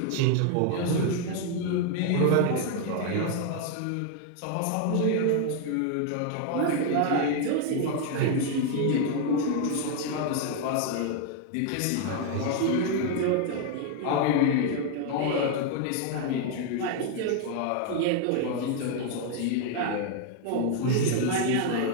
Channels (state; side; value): different; both; correlation 0.00